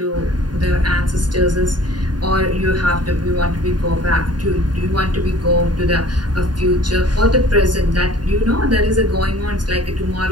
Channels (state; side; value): late; left; 0.70 ms